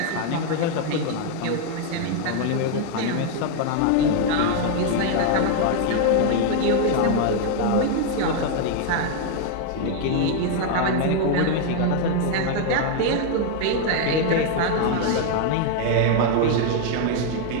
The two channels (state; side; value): different; both; correlation 0.00